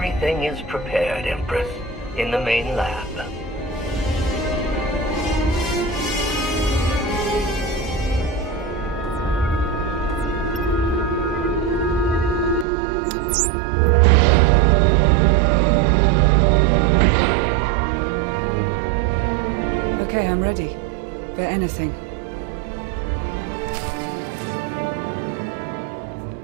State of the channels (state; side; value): drops out; left; at 12.7 s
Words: is prepared, Empress. In the main lab. Okay, I'm ready. For anything.